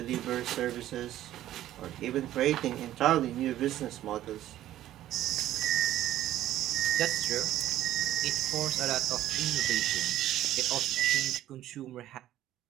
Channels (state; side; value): quieter; left; 13.3 dB